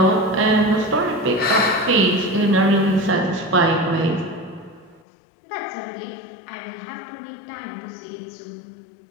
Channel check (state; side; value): drops out; right; at 5.0 s